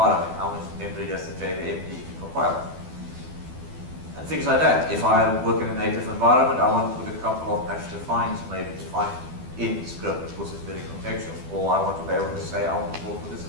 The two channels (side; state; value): left; late; 12 ms